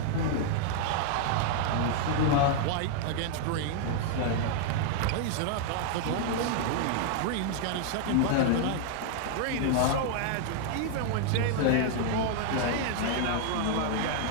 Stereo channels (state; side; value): different; both; correlation -0.01